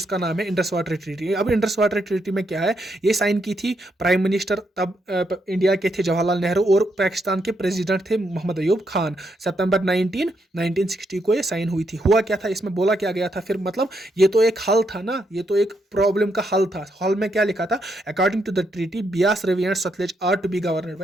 नाम है इंडस वाटर ट्रीटी। अब इंडस वाटर ट्रीटी में क्या है, ये साइन की थी प्राइम मिनिस्टर तब इंडिया के थे जवाहरलाल नेहरू, और पाकिस्तान के प्रेसिडेंट थे मोहम्मद अयूब खान। सितंबर 1960 को ये साइन हुई थी। हुआ क्या था इसमें, बोला क्या गया था फिर, मतलब ये तो एक हल था ना, ये तो एक प्रॉब्लम का हल था। हल में क्या लिखा था, according to the treaty Beas, Ravi and Sutlej are to be governed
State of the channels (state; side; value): normal; both; correlation 0.79